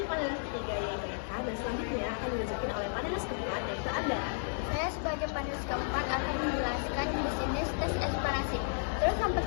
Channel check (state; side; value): silent; right; digital silence